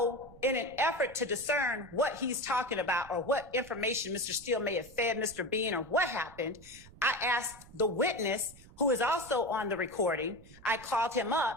in an effort to discern what he's talking about or what information Mr. Steele may have fed Mr. Bean or what happened, I asked the witness, who is also on the recording, I called him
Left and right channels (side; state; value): right; noise; rumble, 21 dB below the sound